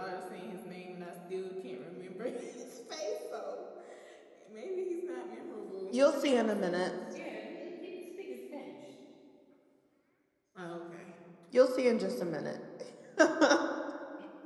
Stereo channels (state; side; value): identical; both; correlation 1.00